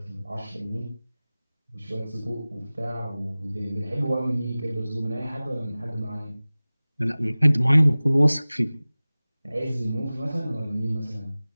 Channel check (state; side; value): inverted; both; correlation -0.98